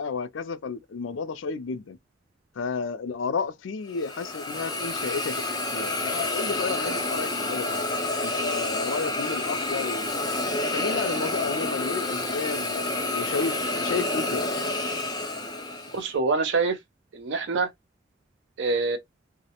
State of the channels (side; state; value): both; normal; correlation -0.10